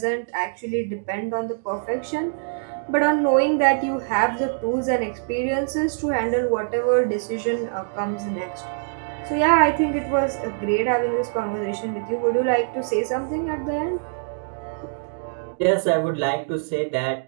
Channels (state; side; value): silent; left; digital silence